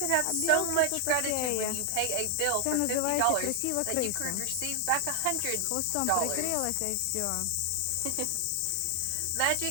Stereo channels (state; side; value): different; both; correlation 0.00